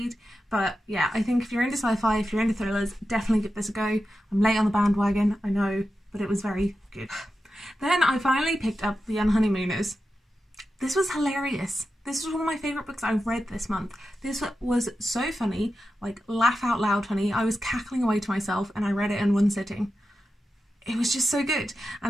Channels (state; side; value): normal; both; correlation 0.90